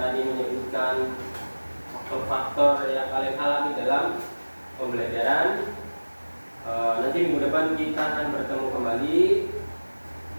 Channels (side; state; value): both; inverted; correlation -1.00